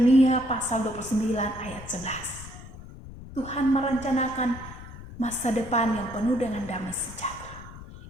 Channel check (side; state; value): left; noise; rumble, 15 dB below the sound